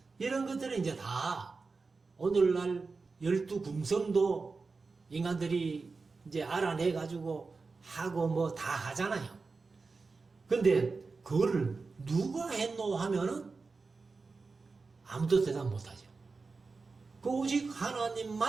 이런 것들은 이제 다 오늘날 12금성도 인간들이 이제 알아내가지고 하고 뭐 다 하잖아요. 근데 그거를 누가 했노 하면은 아무도 대답 못하죠. 그 오직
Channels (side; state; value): left; quieter; 4.2 dB